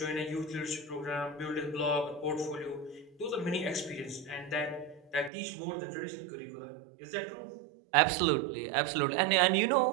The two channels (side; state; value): left; drops out; at 5.3 s